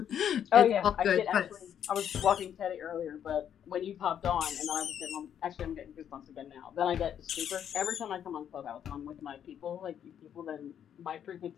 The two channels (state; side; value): quieter; right; 9.2 dB